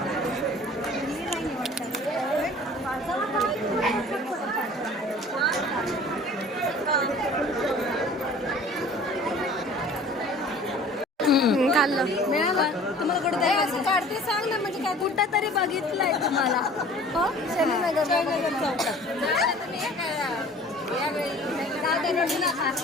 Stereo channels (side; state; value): both; normal; correlation 0.47